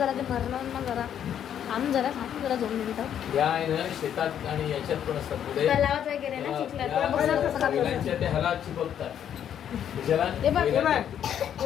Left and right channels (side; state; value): right; quieter; 9.5 dB